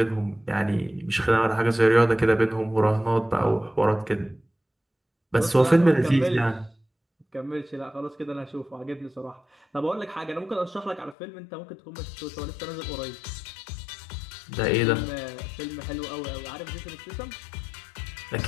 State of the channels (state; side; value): drops out; right; at 11.2 s